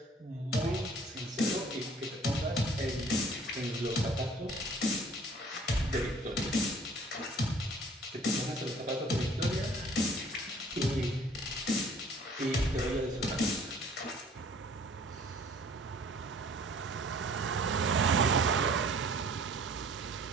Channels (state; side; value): normal; both; correlation 0.53